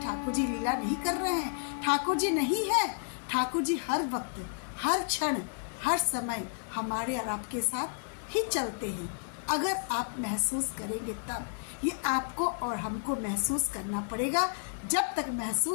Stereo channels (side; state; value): right; silent; digital silence